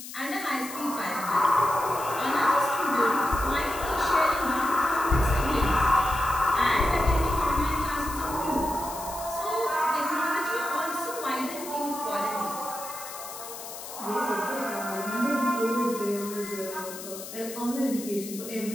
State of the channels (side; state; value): left; noise; hiss, 11 dB below the sound